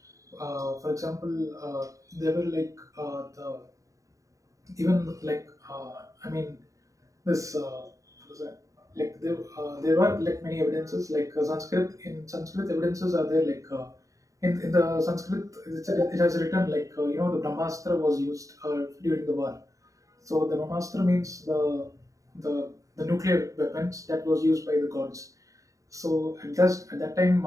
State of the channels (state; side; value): late; left; 0.16 ms